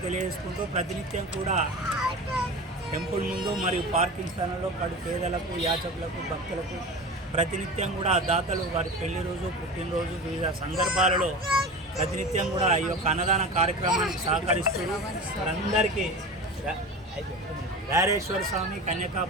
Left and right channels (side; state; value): both; normal; correlation 0.32